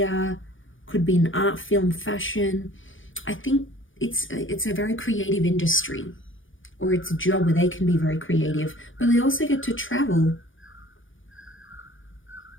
could be in art, film, fashion. I think it's a very creative industry, or it's a job where they can be very creative, but they also get to travel.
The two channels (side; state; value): right; late; 0.57 ms